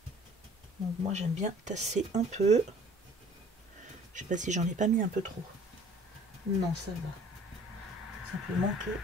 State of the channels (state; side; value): normal; both; correlation 0.52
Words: Donc moi j'aime bien tasser un peu. Je sais pas si j'en ai pas mis un peu trop. Non, ça va. Simplement